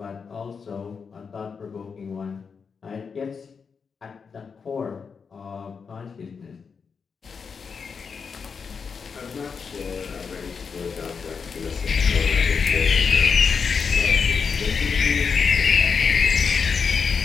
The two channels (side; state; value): right; quieter; 5.8 dB